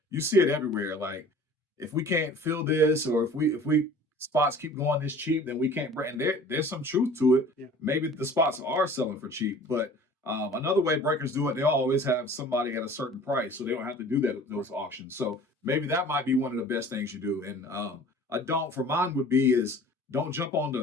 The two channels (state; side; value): normal; both; correlation 0.46